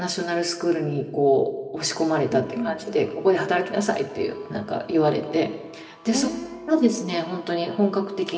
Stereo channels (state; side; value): identical; both; correlation 1.00